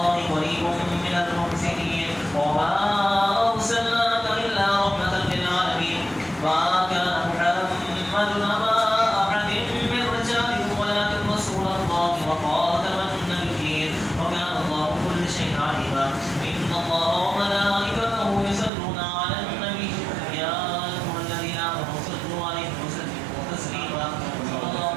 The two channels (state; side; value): drops out; left; at 18.7 s